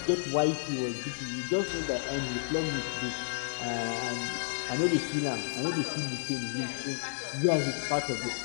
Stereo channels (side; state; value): right; silent; digital silence